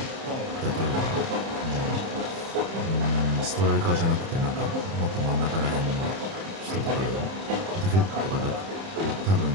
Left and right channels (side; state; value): left; late; 31 ms